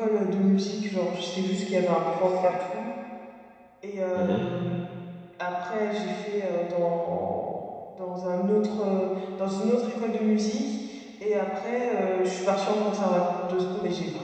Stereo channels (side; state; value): both; identical; correlation 1.00